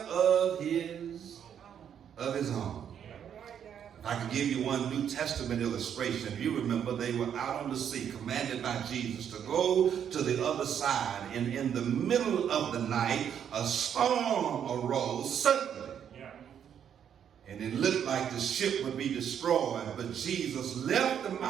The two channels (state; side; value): quieter; left; 8.7 dB